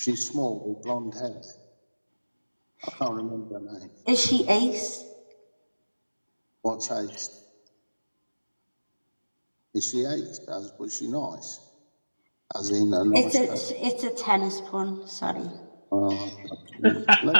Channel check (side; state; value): both; inverted; correlation -1.00